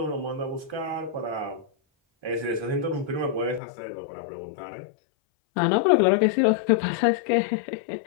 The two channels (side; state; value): right; drops out; at 3.6 s